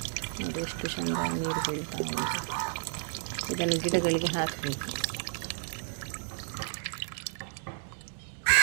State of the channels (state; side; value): silent; left; 56 dB below the other